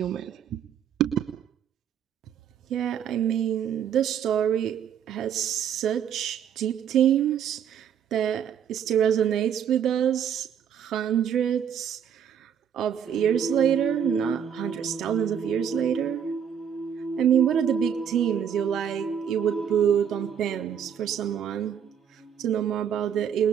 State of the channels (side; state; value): left; quieter; 8.5 dB